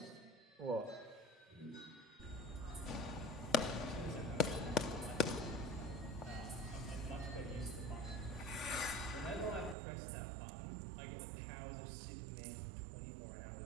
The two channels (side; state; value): left; drops out; at 9.8 s